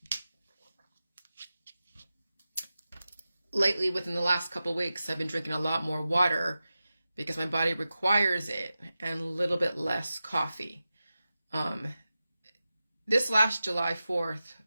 Lately, within the last couple weeks, I've been drinking a lot more water because my body requires it, and a little bit less coffee. This last July 4th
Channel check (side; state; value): both; inverted; correlation -0.93